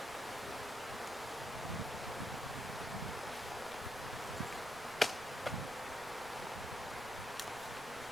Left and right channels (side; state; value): right; noise; rumble, 15 dB below the sound